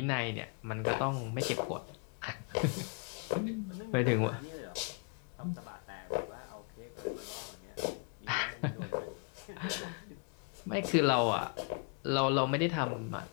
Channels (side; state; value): right; quieter; 34.8 dB